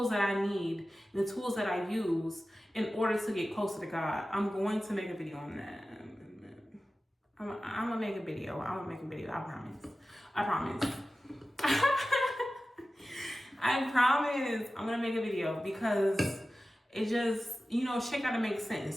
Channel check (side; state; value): both; normal; correlation 0.95